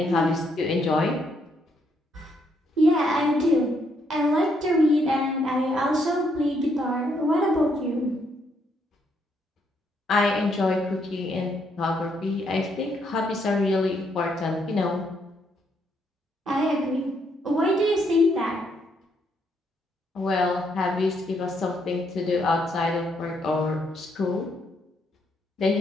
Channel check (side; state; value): both; normal; correlation 0.74